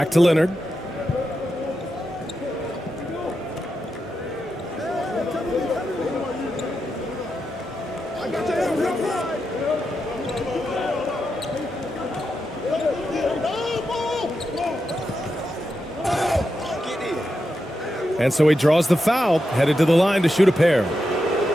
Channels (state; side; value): normal; both; correlation 0.87